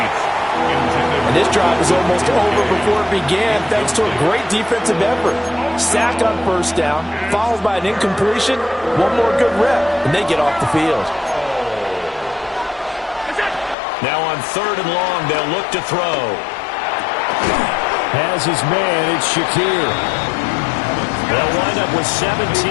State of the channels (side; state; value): right; drops out; at 13.8 s